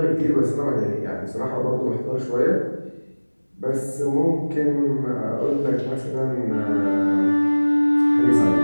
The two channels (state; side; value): inverted; both; correlation -1.00